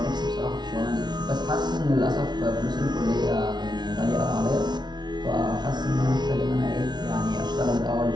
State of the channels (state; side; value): late; left; 0.20 ms